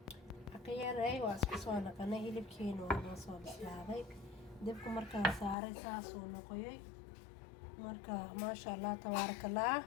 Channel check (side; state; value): right; drops out; at 5.6 s